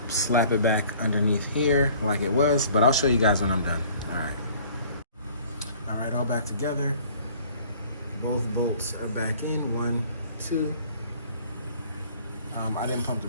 slap it back underneath here like it was, but I'll show you guys when I'm done. All right, all back together. Both bolts are back in, 1, 2. I didn't pump the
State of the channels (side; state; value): both; inverted; correlation -0.53